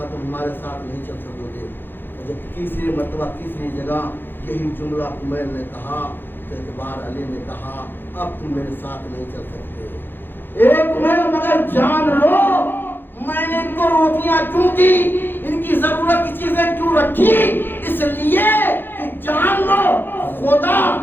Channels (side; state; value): right; late; 0.098 ms